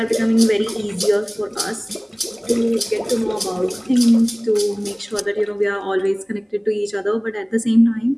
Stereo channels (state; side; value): identical; both; correlation 1.00